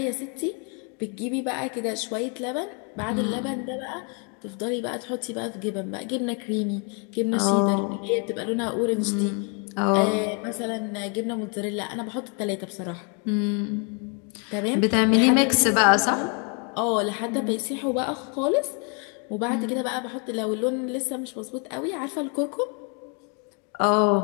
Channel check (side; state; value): right; quieter; 37.0 dB